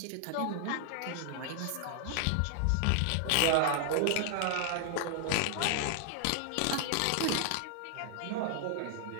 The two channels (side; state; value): both; different; correlation 0.00